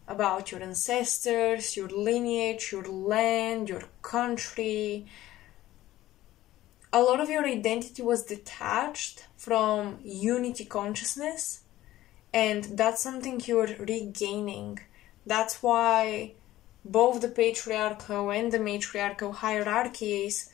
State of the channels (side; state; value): right; quieter; 15.1 dB